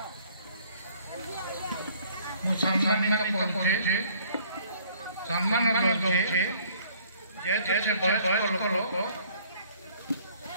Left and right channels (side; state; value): both; inverted; correlation -0.59